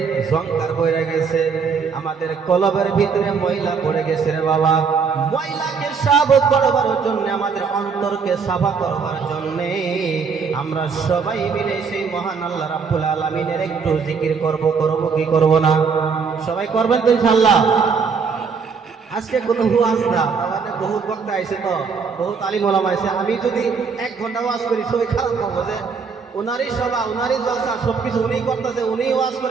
সংকার পড়ে গেছে, আমাদের কলবের ভিতরে ময়লা পড়ে গেছে রে বাবা। ময়লাকে সাফ করবার জন্য, আমাদের অন্তরকে সাফা করবার জন্য আমরা সবাই মিলে সেই মহান আল্লাহ রাব্বুল আলামিনের একটু জিকির করব কি করব না? সবাই করবেন তো ইনশাআল্লাহ। আজকে কোনো ওয়াজ না, আমাদের বহুত বক্তা আইছে, তো বহুত আলিম ওলামা আইছে। আমি যদি 1 ঘন্টা ওয়াজ করি সবাই খারাপ পাবো যে উনারই সভা, উনারই জলসা, সবকিছু উনিই করতেছে, উনিই ওয়াজ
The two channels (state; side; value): quieter; left; 5.6 dB